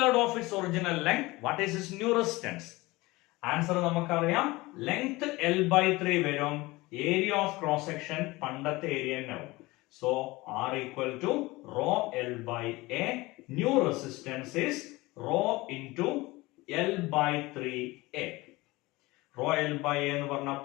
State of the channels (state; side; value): quieter; right; 21.3 dB